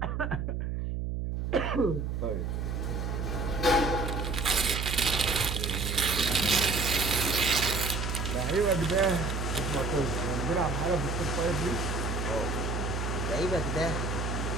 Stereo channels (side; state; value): right; noise; hum, 2 dB below the sound